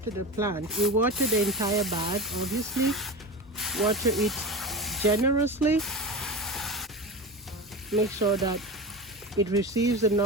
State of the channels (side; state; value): both; normal; correlation 0.27